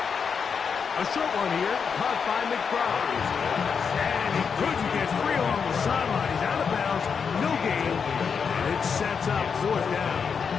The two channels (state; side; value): quieter; right; 6.2 dB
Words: A short one here, caught by McBride. And he couldn't get free along the sideline. He's out of bounds, no gain, and it sets up 4th down.